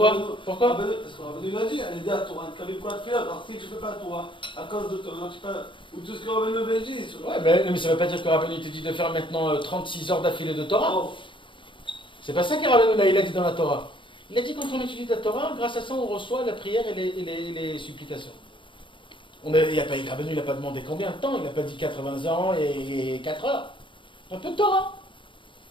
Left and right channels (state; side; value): late; right; 0.24 ms